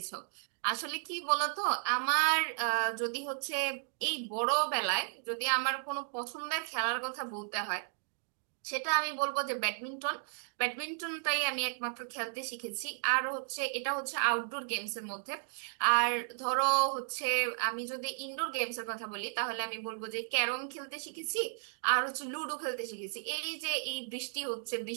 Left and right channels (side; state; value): left; silent; digital silence